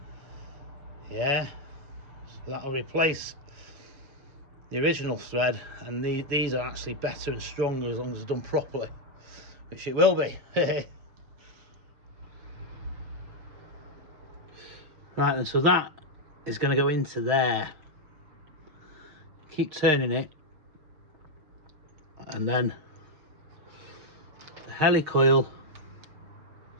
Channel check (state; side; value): late; left; 6.5 ms